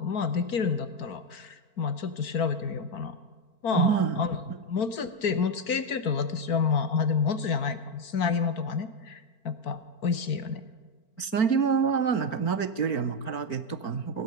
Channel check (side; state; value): right; late; 4.4 ms